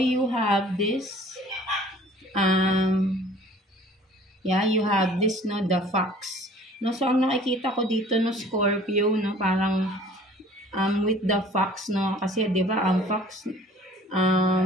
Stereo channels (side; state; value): both; normal; correlation 0.51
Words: have this, you have this, no, the fox. No, so, ang nakikita ko dito, no, Scorpio, no, parang, with the fox, no, kasi, di ba, ang fox,